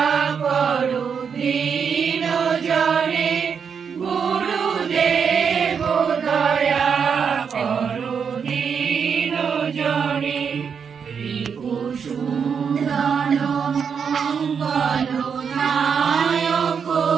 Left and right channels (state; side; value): quieter; left; 6.6 dB